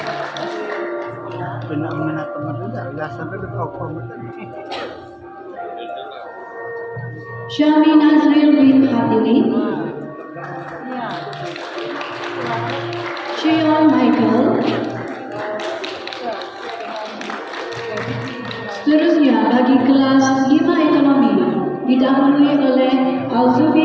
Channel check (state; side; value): identical; both; correlation 1.00